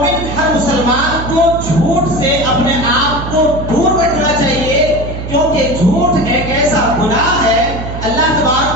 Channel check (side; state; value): right; noise; hum, 8 dB below the sound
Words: ہر مسلمان کو جھوٹ سے اپنے آپ کو دور رکھنا چاہیے، کیونکہ جھوٹ ایک ایسا گناہ ہے۔ اللہ